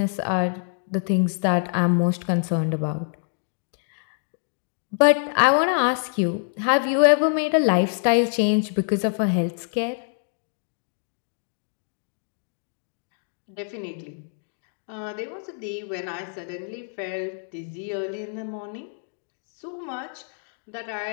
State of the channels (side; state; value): right; silent; digital silence